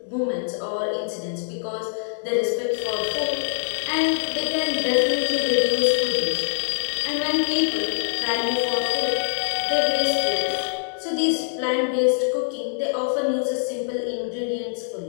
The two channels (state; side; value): silent; right; digital silence